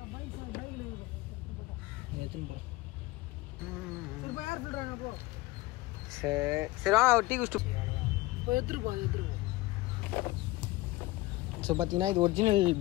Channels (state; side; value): quieter; right; 19.7 dB